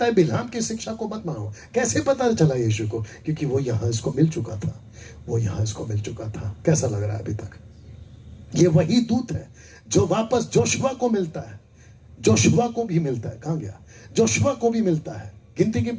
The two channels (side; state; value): both; identical; correlation 1.00